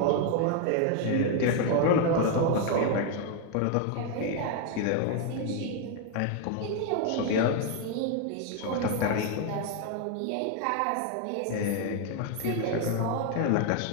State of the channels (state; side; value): different; both; correlation 0.01